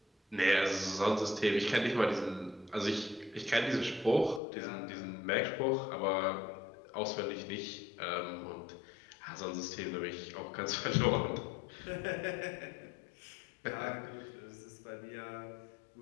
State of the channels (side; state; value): right; drops out; at 4.4 s